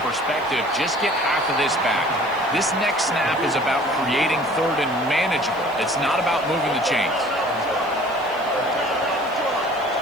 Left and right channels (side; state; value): right; noise; hiss, 26 dB below the sound